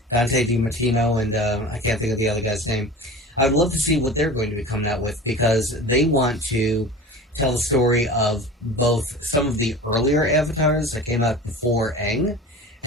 DiMartino and I can't think of the other guy's name. I would love to see what they're going to be coming out with, because they want to tell the story of both some of the earlier avatars that came out before Aang,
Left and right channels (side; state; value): both; normal; correlation 0.36